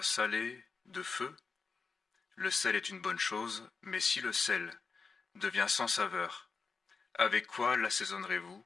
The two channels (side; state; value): right; quieter; 4.8 dB